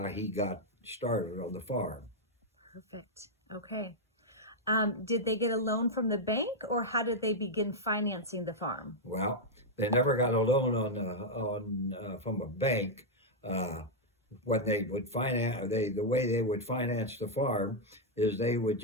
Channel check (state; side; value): normal; both; correlation -0.02